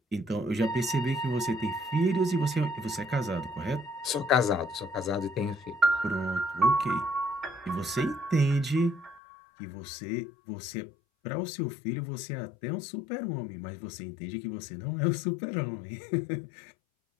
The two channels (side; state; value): right; drops out; at 9.2 s